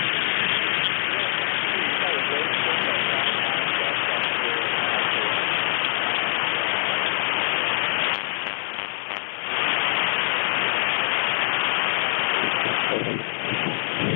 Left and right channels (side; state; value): right; silent; 61 dB below the other